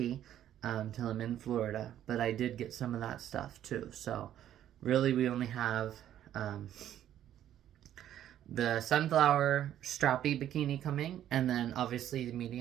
till I'm in Florida. But I did get some of that stuff too. So really we only have the sunflower strappy bikini coming, and then obviously the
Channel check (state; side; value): quieter; left; 11.3 dB